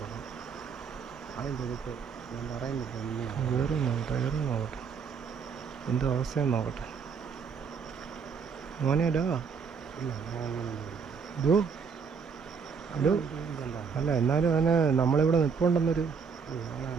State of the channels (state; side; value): quieter; left; 6.0 dB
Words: അതിൻ്റെ എടുത്ത് ഞാൻ പറയുന്നില്ല. കയറി നോക്കട്ടെ എന്തോ അവസ്ഥയെന്ന് നോക്കട്ടെ. മോനെ ഡോ ഇല്ല ഡോ ഡോ അല്ല, എന്നാലും അവന് നമ്മളിവിടെ നിൽപ്പുണ്ടെന്നൊരു